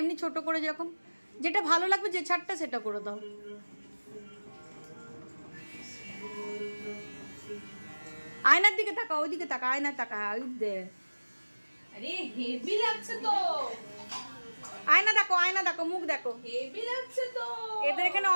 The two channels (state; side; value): inverted; both; correlation -1.00